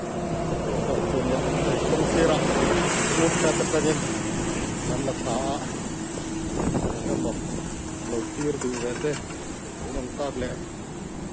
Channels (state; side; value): identical; both; correlation 1.00